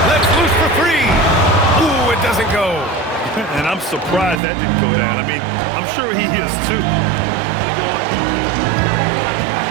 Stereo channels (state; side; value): drops out; left; at 4.4 s